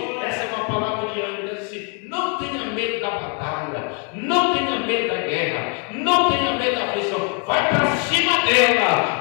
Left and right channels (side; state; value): right; quieter; 38.2 dB